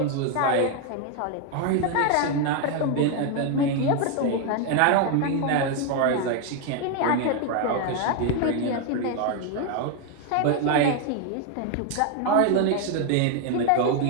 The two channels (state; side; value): different; both; correlation 0.01